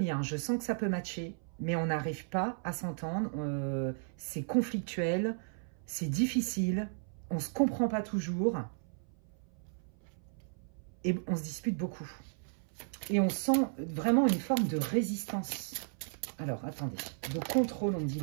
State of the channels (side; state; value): left; silent; 55 dB below the other